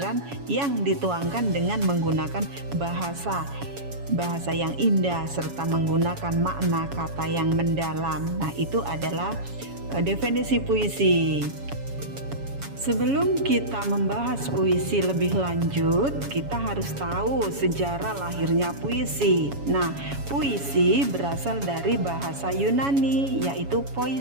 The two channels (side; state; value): left; late; 7.2 ms